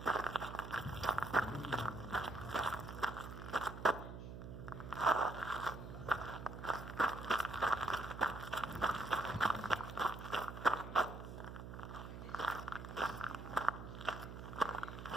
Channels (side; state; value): right; noise; hum, 10 dB below the sound